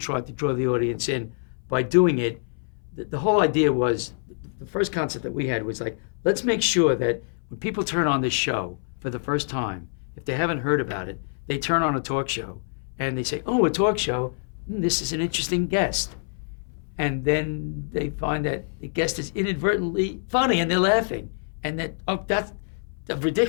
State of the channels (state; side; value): silent; right; 61 dB below the other